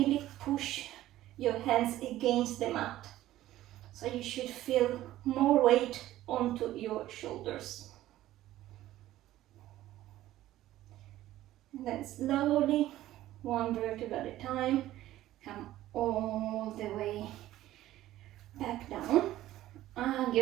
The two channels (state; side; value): quieter; left; 14.6 dB